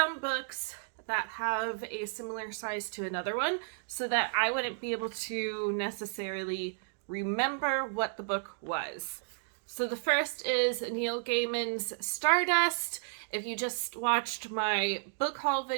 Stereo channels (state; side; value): silent; left; digital silence